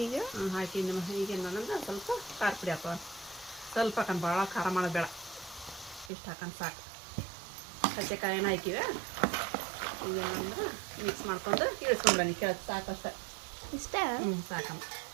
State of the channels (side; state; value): left; drops out; at 6.1 s